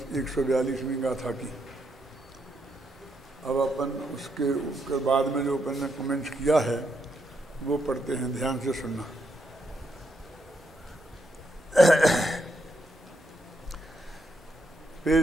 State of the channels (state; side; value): normal; both; correlation 0.79